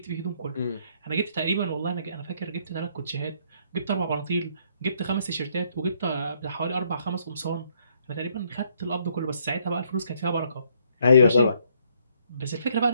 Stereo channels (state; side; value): inverted; both; correlation -0.69